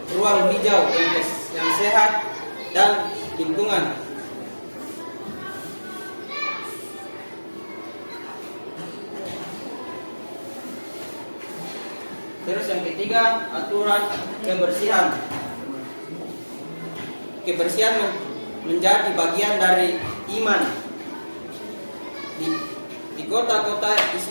ruang hijau yang sehat dan lingkungan. Terus yang ketiga, aturan kebersihan. Kebersihan menjadi bagian dari iman. Di kota-kota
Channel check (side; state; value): both; inverted; correlation -1.00